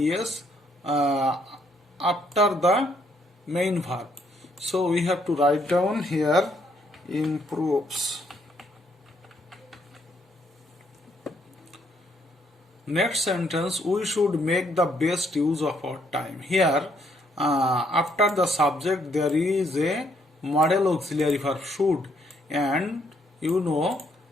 after the main verb. So we have to write down here improves. Next sentence, we should make the best use of our time. Here after the subject there is a model auxiliary verb should, and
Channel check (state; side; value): normal; both; correlation 0.70